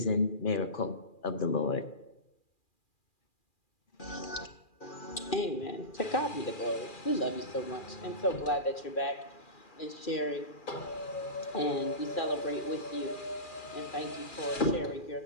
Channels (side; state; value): right; late; 2.4 ms